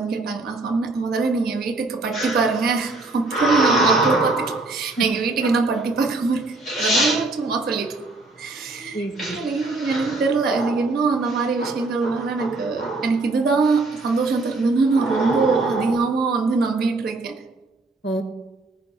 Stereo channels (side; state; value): left; quieter; 3.3 dB